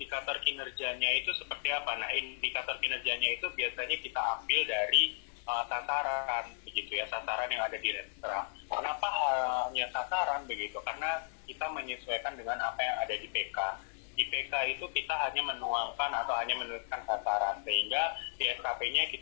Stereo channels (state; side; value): silent; right; digital silence